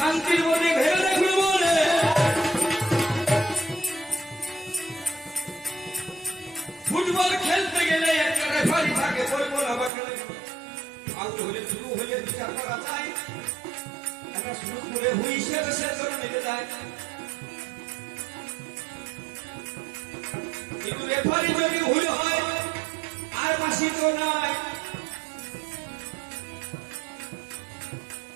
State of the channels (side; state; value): left; drops out; at 9.9 s